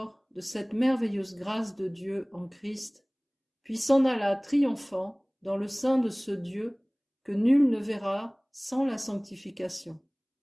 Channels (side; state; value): both; identical; correlation 1.00